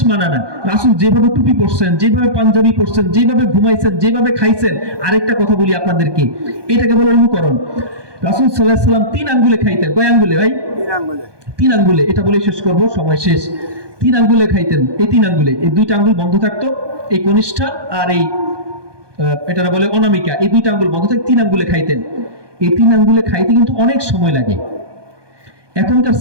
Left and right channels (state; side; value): late; left; 1.2 ms